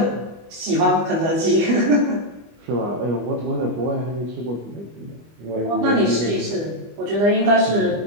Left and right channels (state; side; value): late; left; 25 ms